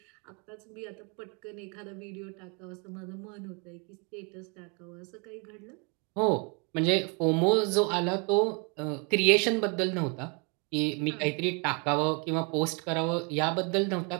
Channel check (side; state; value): left; quieter; 33.9 dB